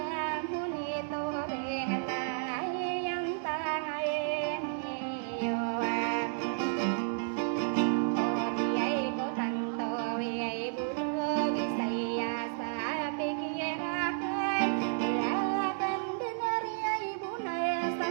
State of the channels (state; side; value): silent; left; digital silence